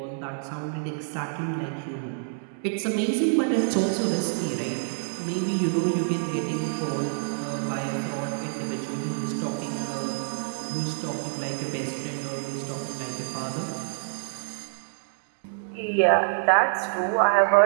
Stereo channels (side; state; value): left; silent; digital silence